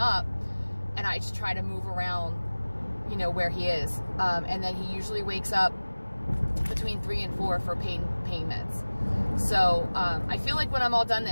and I just try to move around, you know, where he is, and then he usually wakes up between 3 and 4 for pain meds. So I feel like when I'm all done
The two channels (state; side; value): inverted; both; correlation -1.00